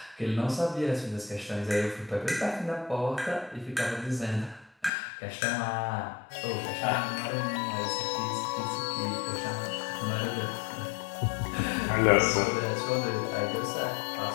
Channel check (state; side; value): drops out; right; at 4.9 s